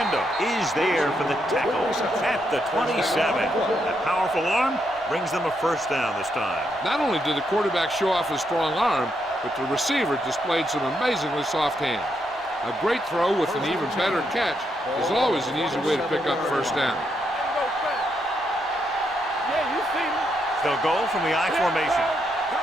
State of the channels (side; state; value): both; normal; correlation 0.79